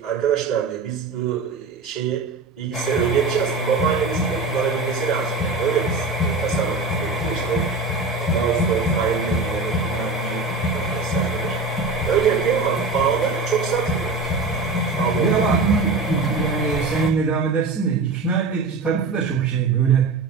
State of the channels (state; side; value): quieter; left; 3.7 dB